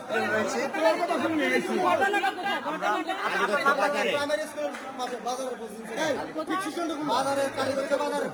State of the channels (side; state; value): both; identical; correlation 1.00